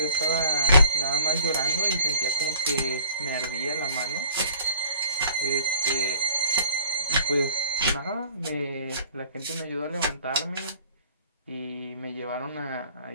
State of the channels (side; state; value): both; inverted; correlation -0.48